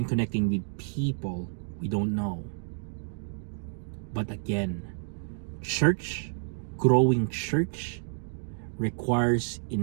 connecting with people we don't know. But again, church, growing church, requires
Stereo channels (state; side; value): silent; left; digital silence